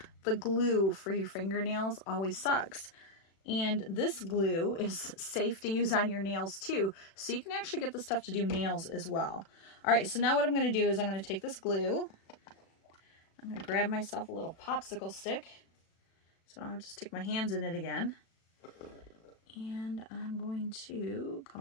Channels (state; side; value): late; right; 36 ms